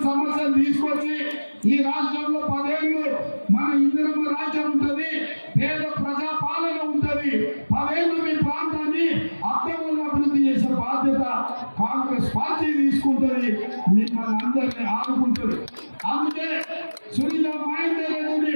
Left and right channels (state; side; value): inverted; both; correlation -1.00